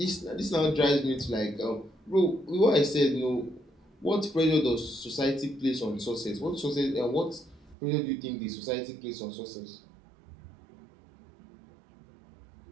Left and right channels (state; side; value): drops out; left; at 7.8 s